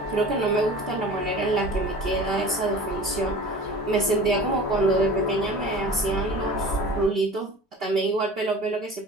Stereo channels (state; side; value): normal; both; correlation 0.39